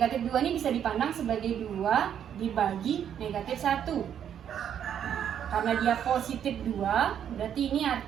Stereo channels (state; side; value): quieter; left; 9.2 dB